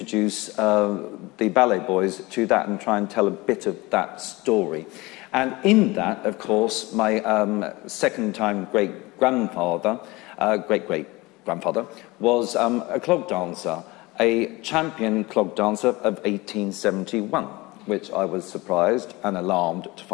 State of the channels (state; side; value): quieter; right; 22.2 dB